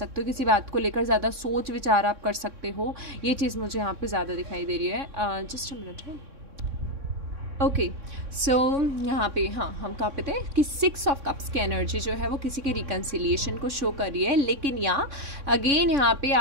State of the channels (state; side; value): late; left; 3.6 ms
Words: हो, किसी बात को लेकर ज़्यादा सोच विचार आप कर सकते हो, ये चीज़ मुझे यहाँ पे ज़्यादा दिखाई दे रही है। जस्ट अ मिनट है। ओके सो यहाँ पे हाँ हम कहाँ पे थे कि 6 ऑफ कप्स की एनर्जी जो है वो किसी के रिकन्सिलिएशन को शो कर रही है, लेकिन अगेन यहाँ पे